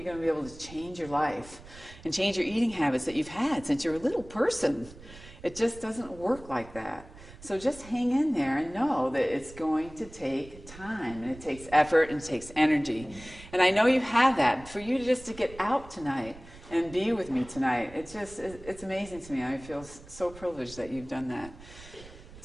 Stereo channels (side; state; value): right; noise; rumble, 19 dB below the sound